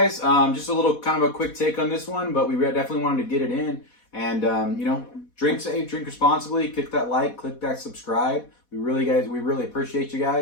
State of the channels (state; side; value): late; right; 4.1 ms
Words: Just a little kind of a quick take on this one, but we definitely wanted to get it in. And, you know, drink safe, drink responsibly, click that like, click that subscribe. We really appreciate you